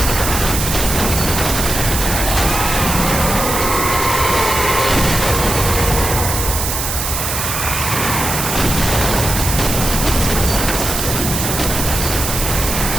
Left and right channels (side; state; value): right; noise; hiss, 3 dB below the sound